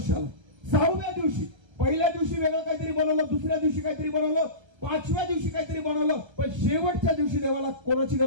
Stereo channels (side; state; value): left; late; 1.3 ms